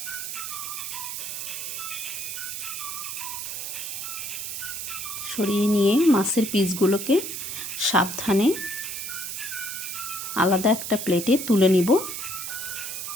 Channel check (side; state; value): right; noise; hiss, 5 dB below the sound